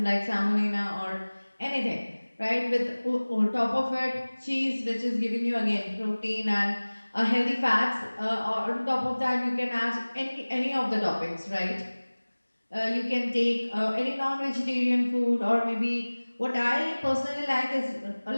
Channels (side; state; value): both; inverted; correlation -1.00